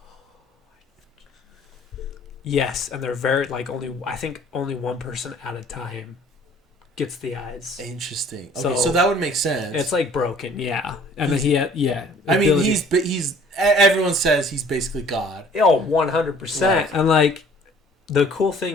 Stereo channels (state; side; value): normal; both; correlation 0.53